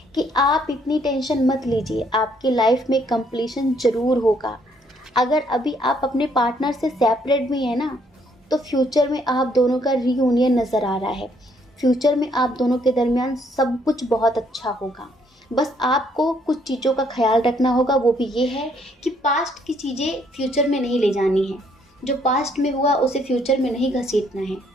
कि आप इतनी टेंशन मत लीजिए, आपकी लाइफ में कंप्लीशन ज़रूर होगा। अगर अभी आप अपने पार्टनर से सेपरेट भी हैं ना, तो फ्यूचर में आप दोनों का रीयूनियन नज़र आ रहा है। फ्यूचर में आप दोनों के दरमियान सब कुछ बहुत अच्छा होगा। बस आपको कुछ चीज़ों का ख्याल रखना होगा, वो भी ये है कि पास्ट की चीज़ें फ्यूचर में नहीं ले जानी है। जो पास्ट में हुआ उसे फ्यूचर में नहीं घसीटना है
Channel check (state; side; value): normal; both; correlation 0.68